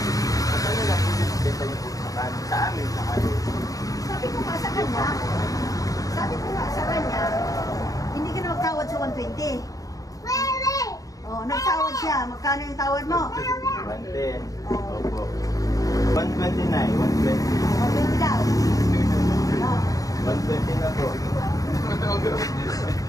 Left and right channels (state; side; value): late; right; 0.17 ms